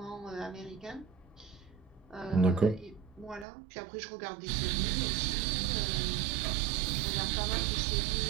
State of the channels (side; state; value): left; drops out; at 3.5 s